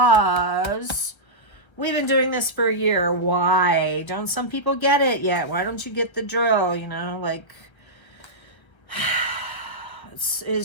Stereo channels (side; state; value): right; late; 1.3 ms